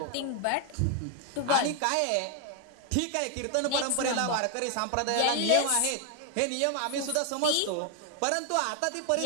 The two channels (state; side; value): different; both; correlation 0.00